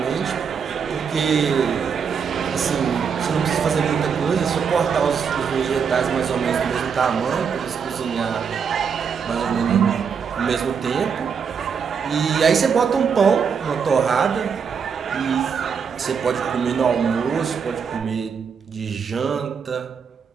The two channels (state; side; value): quieter; left; 6.5 dB